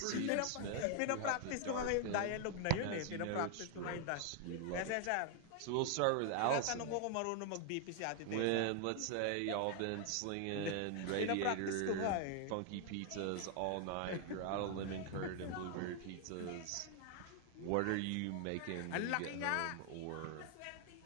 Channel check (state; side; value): different; both; correlation 0.00